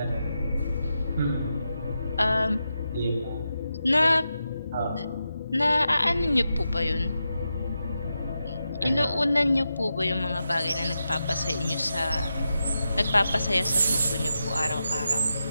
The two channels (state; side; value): inverted; both; correlation -0.88